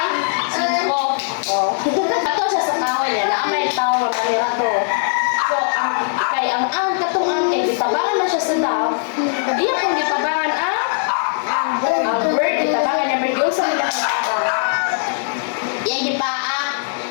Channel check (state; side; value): silent; right; digital silence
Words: Ko. Oh. Patong siya sa kahoy niya, na may tao na manira to. So, ang katong kay gitabangan na siya sa Dove, iya kung gitabangan ang bird, gitabangan niya, bird, yung sa nila yan gipaa.